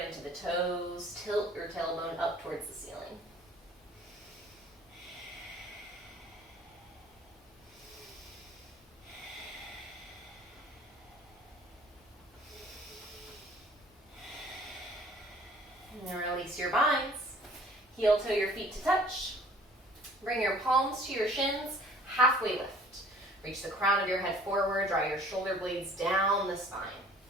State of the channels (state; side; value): normal; both; correlation 0.52